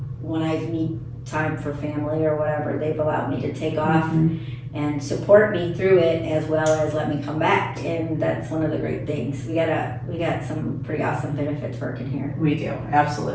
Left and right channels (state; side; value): identical; both; correlation 1.00